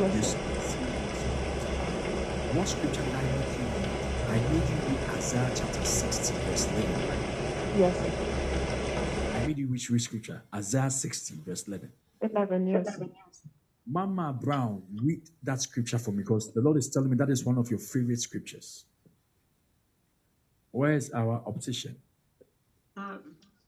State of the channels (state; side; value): identical; both; correlation 1.00